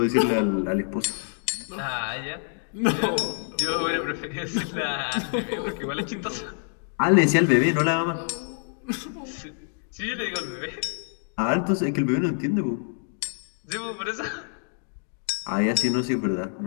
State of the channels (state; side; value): silent; right; 61 dB below the other